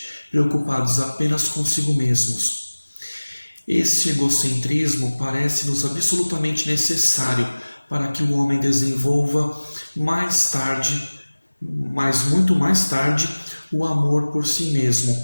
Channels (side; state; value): both; inverted; correlation -1.00